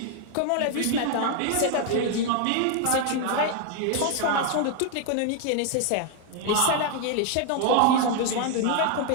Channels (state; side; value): different; both; correlation 0.00